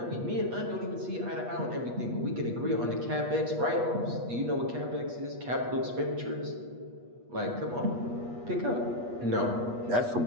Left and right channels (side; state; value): left; late; 8.3 ms